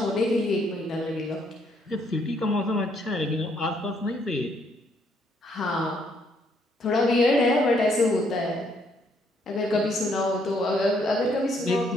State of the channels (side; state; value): both; normal; correlation 0.70